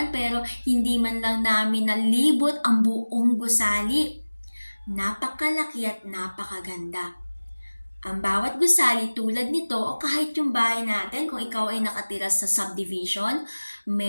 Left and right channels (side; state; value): both; inverted; correlation -1.00